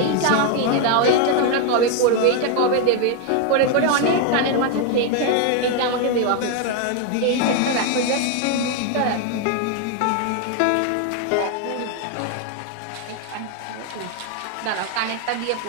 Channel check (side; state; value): both; different; correlation 0.01